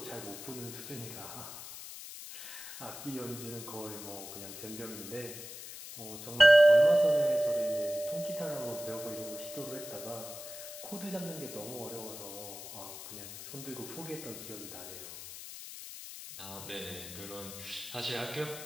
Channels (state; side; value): noise; left; hiss, 11 dB below the sound